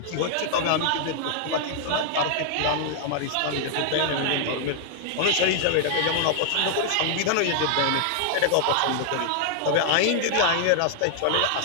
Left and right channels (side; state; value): both; different; correlation -0.01